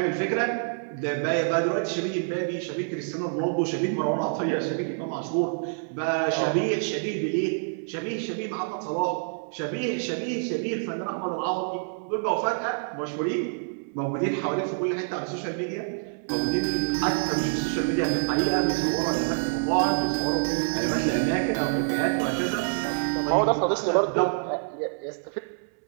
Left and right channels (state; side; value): silent; left; 60 dB below the other